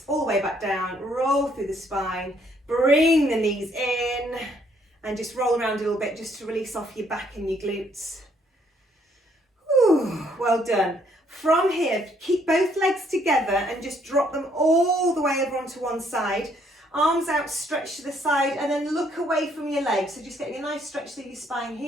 all the way back down, roll through the spine, bring the knees in and just roll around a little bit just to release off your back and your glutes. Whew, well done. From here, keep both legs together and just drop them all the way over onto one side. Arms out, stretch to the side, and then look away from your legs. So just getting a nice stretch through your spine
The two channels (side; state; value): both; normal; correlation 0.68